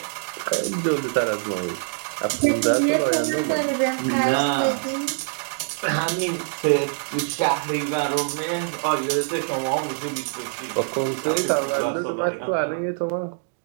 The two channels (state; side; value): silent; left; digital silence